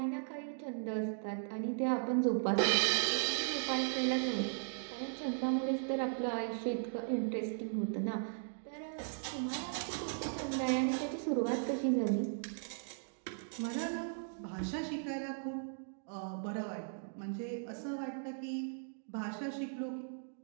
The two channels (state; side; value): silent; left; digital silence